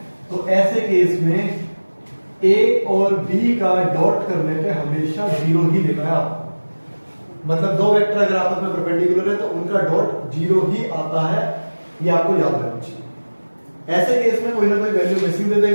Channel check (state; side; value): inverted; both; correlation -1.00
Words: तो ऐसे केस में ए और बी का डॉट करने पे हमेशा 0 ही लिखा है आपको। मतलब दो वेक्टर अगर आपस में परपेंडिकुलर है तो उनका डॉट 0 ही आता है, ये आपको याद रखना चाहिए। ऐसे केस में कोई ना कोई वैल्यू मिसिंग दे